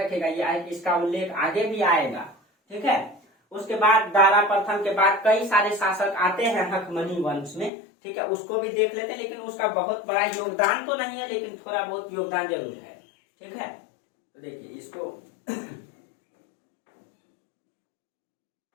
ये इसका उल्लेख आगे भी आएगा, ठीक है। उसके बाद दारा प्रथम के बाद कई सारे शासक आते हैं हकमनी वंश में, ठीक है, उसको भी देख लेते हैं, लेकिन उसका बहुत बड़ा योगदान तो नहीं है, लेकिन थोड़ा बहुत योगदान जरूर है, ठीक है। तो देखिए इसको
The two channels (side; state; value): right; drops out; at 7.7 s